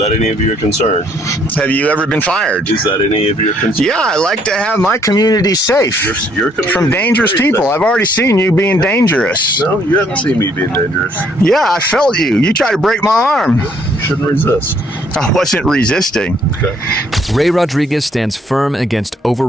any of your concern? Have you ever been fired? Is that any of your concern? Yeah, I like to have my community safe Your community from dangerous people. safe. I've already seen you being dangerous. No, you haven't seen me being dangerous. Yeah, I felt you. You tried to break my arm. You shouldn't resist. I wasn't resisting. Okay. Ray Rodriguez stands firm against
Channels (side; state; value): both; normal; correlation 0.66